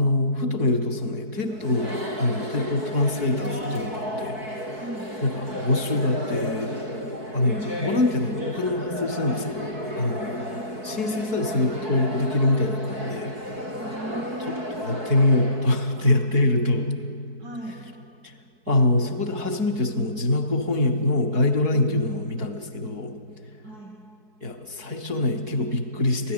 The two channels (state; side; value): late; left; 4.6 ms